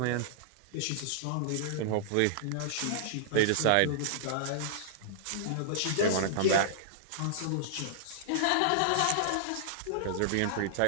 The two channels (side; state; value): both; different; correlation -0.01